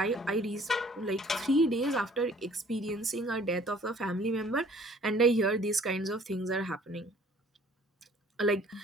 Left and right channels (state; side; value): normal; both; correlation 0.55